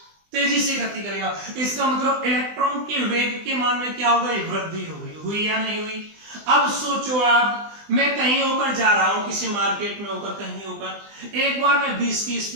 करेगा। इसका मतलब इलेक्ट्रॉन के वेग के मान में क्या हो गई, वृद्धि हो गई। हुई या नहीं हुई। अब सोचो आप, मैं कहीं होकर जा रहा हूं, किसी मार्केट में होकर, कहीं होकर, एक बार मैं 20 की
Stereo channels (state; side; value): late; left; 20 ms